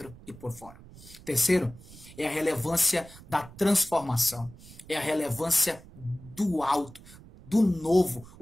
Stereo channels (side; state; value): right; noise; rumble, 20 dB below the sound